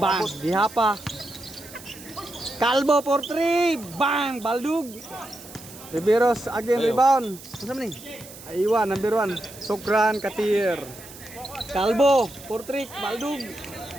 Dihapa. Calvo for 3. Bang! Baldug. Riveros again rebound. Ano man ni? Aywa, number 1. Sokran Katir. Calvo for 3. Baldug.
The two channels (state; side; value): noise; right; hiss, 17 dB below the sound